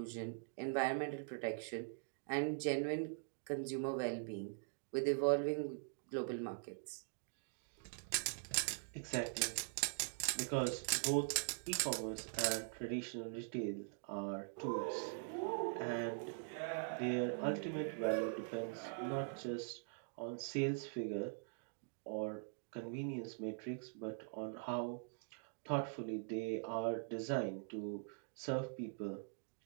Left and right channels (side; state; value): left; silent; digital silence